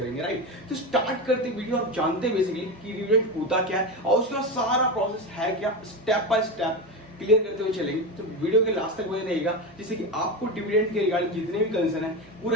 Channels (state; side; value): normal; both; correlation 0.17